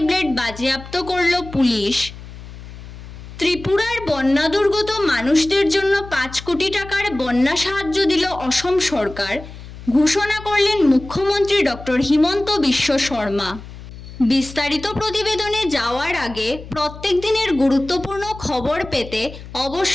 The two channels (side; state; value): left; noise; hum, 15 dB below the sound